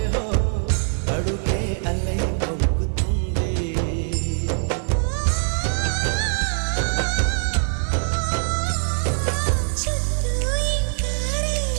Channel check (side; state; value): left; silent; digital silence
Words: హో అడుగే అలై పొంగుతుంటే